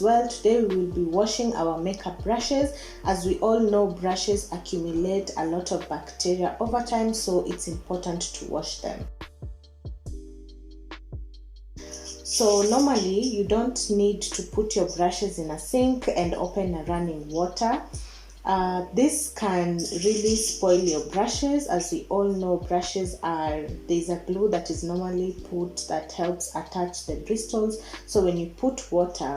well. Today we will be washing our makeup brushes. As we all know, brushes accumulate a lot of bacteria over time, so it's important to wash them. So normally you don't need to put your brushes in a sink and open a running water. This can really spoil your brushes. As we all know, there's a glue that is normally put that helps attach the bristles. So when you put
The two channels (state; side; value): identical; both; correlation 1.00